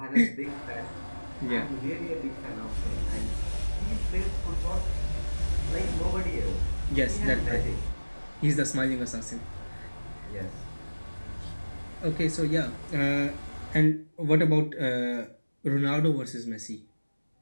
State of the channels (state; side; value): inverted; both; correlation -1.00